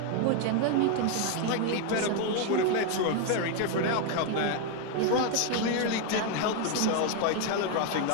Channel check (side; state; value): both; different; correlation 0.01